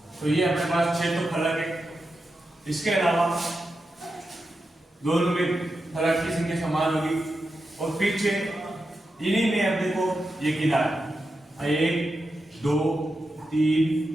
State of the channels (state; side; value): normal; both; correlation 0.89